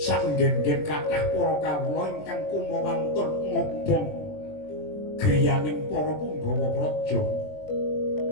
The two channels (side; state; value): right; late; 20 ms